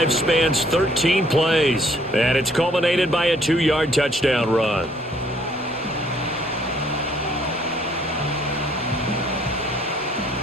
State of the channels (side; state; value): both; normal; correlation 0.63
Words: spans 13 plays, and it's culminated by a 2-yard touchdown run.